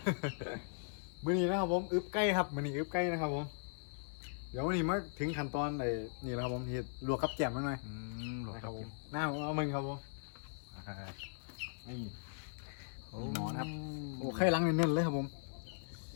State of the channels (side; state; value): right; silent; 52 dB below the other